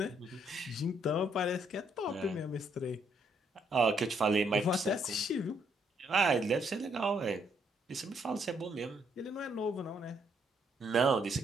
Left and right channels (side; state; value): both; normal; correlation 0.72